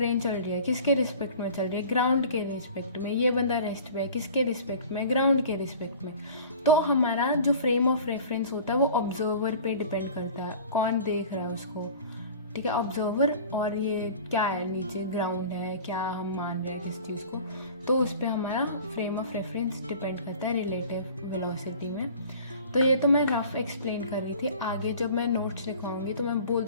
चल रही है, किसके रिस्पेक्ट में चल रही है? ग्राउंड के रिस्पेक्ट में। ये बंदा रेस्ट पे है, किसके रिस्पेक्ट में? ग्राउंड के रिस्पेक्ट में। तो हमारा जो फ्रेम ऑफ रेफरेंस होता है वो ऑब्जर्वर पे डिपेंड करता है, कौन देख रहा है उसको, ठीक है, ऑब्जर्वर। और ये क्या है, नीचे ग्राउंड है, क्या हम मान रहे हैं किस चीज़ को, तो उस पर हमारा फ्रेम ऑफ रेफरेंस डिपेंड करता है रिलेटिव वेलोसिटी में। तो ये तो मैं रफ एक्सप्लेन कर रही थी। आगे जब मैं नोट्स लिखवाऊंगी तो मैं बोल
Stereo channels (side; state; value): both; inverted; correlation -0.43